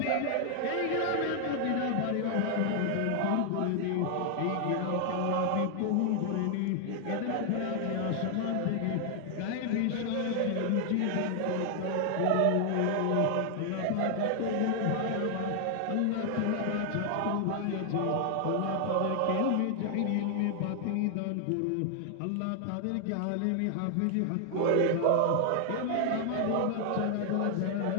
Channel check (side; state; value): both; different; correlation 0.00